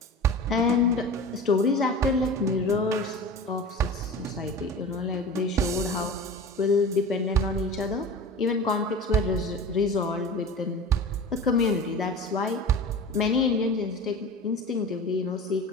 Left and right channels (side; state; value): both; normal; correlation 0.34